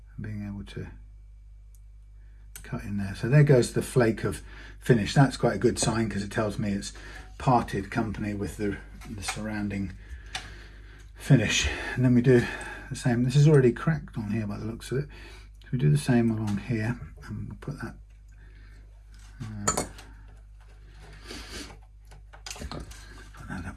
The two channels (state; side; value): identical; both; correlation 1.00